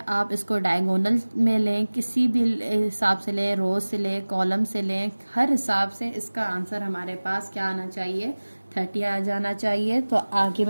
इसको डायगोनल में लें, किसी भी हिसाब से लें, रोज से लें, कॉलम से लें, हर हिसाब से इसका आंसर हमारे पास क्या आना चाहिए? 30 आ जाना चाहिए। तो आगे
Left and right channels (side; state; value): both; inverted; correlation -1.00